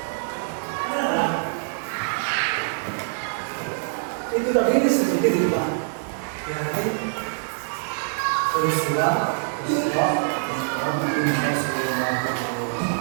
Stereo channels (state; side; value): silent; left; 62 dB below the other